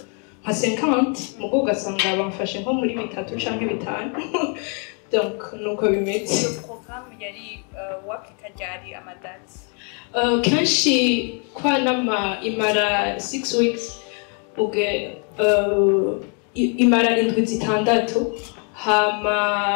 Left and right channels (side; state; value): right; quieter; 38.9 dB